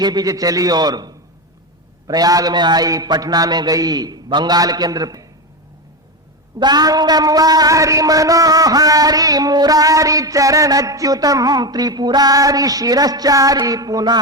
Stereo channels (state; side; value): normal; both; correlation 0.14